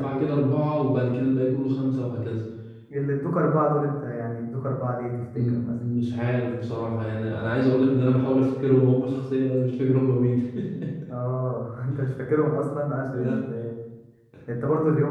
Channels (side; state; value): both; identical; correlation 1.00